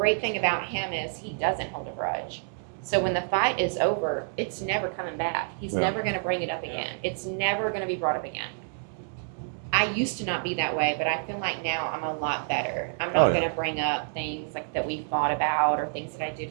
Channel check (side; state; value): left; silent; digital silence